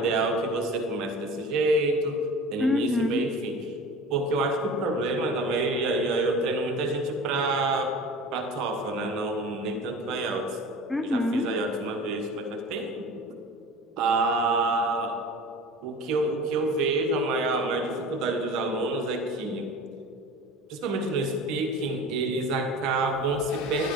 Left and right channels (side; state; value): both; normal; correlation 0.37